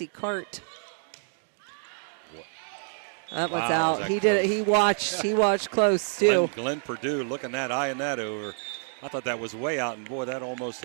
Cart. That one's out. He did it. He watched close too. Glenn Purdue looking that, eyeing that over. I thought that was way out, and boy, that almost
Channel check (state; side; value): silent; left; 60 dB below the other